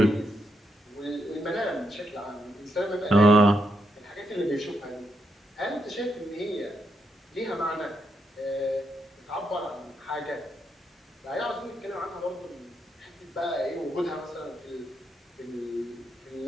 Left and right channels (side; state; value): both; normal; correlation 0.80